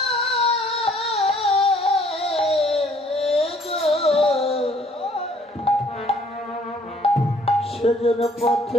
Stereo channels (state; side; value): normal; both; correlation 0.60